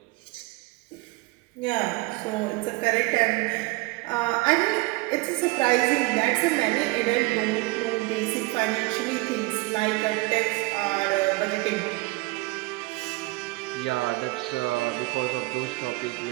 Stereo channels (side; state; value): left; quieter; 23.1 dB